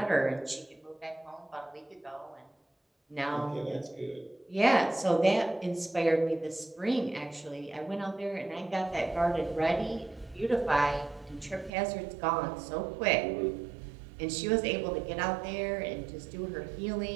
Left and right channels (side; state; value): left; drops out; at 11.7 s